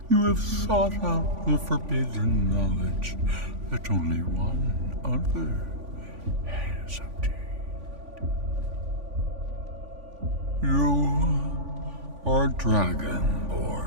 You have sought out the forbidden knowledge that only one other has obtained. You are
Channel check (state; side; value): late; left; 3.5 ms